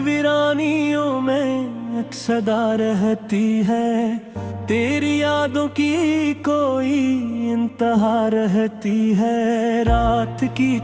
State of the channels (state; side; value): identical; both; correlation 1.00